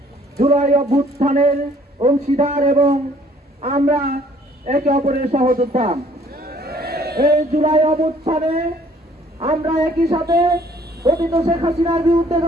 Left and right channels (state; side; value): normal; both; correlation 0.59